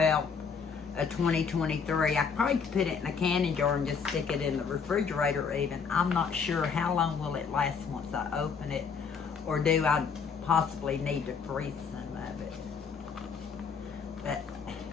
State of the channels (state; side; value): quieter; right; 5.9 dB